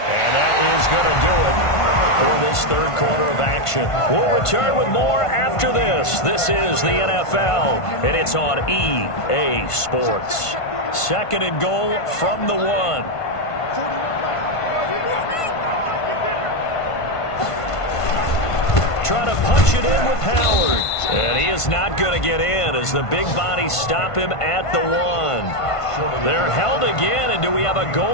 And that is going to do it for this third quarter of action. We'll return with more after this. This is the NFL, and it's on EA Sports. Second and goal from the 1. Trying to punch it in with Howard. And he is not going to get in as the big bodies stop him at the 1. They're held again, and do we have a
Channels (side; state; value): right; late; 1.5 ms